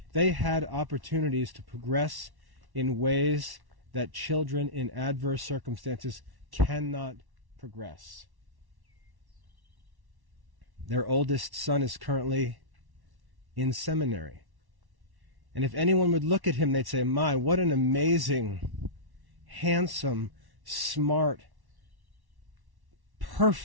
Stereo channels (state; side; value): late; left; 1.1 ms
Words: they had opportunities to progress in ways that children in adverse circumstances cannot progress. Their oldest son is currently in seminary. And if anyone would look at him, they'd say, "My, what an amazing handsome, smart,